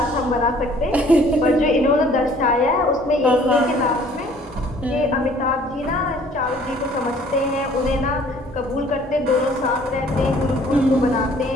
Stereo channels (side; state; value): both; normal; correlation 0.55